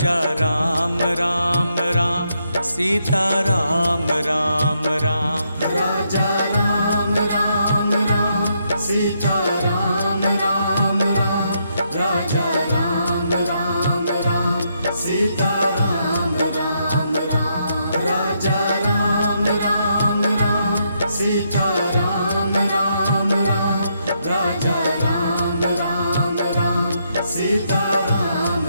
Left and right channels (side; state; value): both; inverted; correlation -0.77